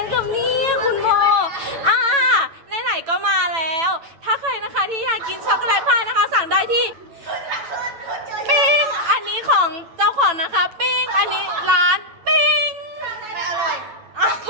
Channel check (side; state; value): left; late; 9.0 ms